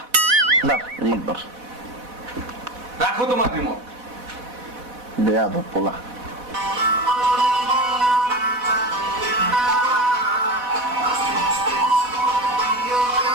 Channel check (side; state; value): left; late; 4.1 ms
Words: ধর রিমোট ধর। রাখো তোমার রিমোট। দেয়া তো পোলা।